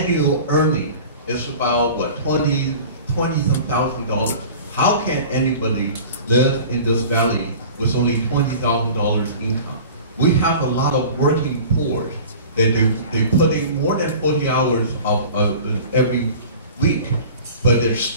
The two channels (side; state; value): both; inverted; correlation -0.40